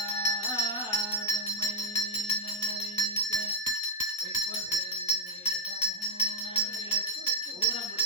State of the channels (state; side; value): normal; both; correlation 0.01